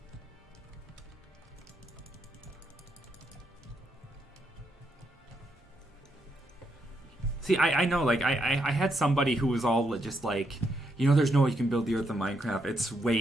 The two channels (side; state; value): both; normal; correlation 0.78